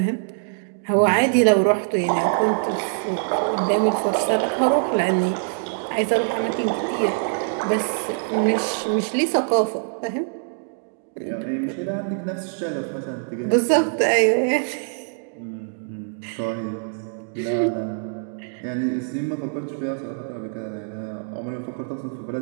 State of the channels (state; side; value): silent; left; digital silence